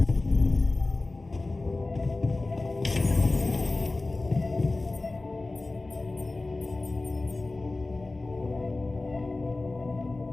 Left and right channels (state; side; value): quieter; right; 3.2 dB